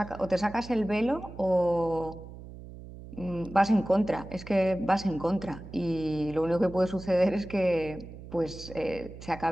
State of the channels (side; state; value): right; noise; hum, 14 dB below the sound